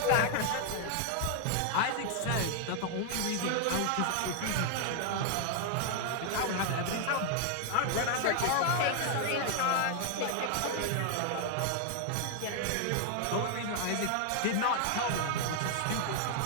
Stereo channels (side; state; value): both; different; correlation 0.00